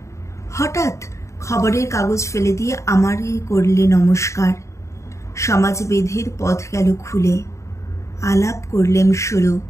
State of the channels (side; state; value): right; late; 0.14 ms